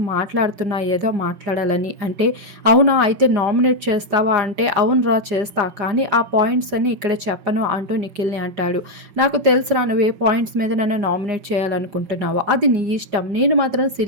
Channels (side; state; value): left; late; 4.9 ms